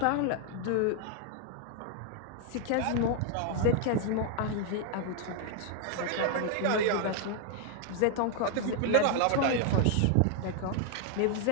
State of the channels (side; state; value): both; different; correlation 0.00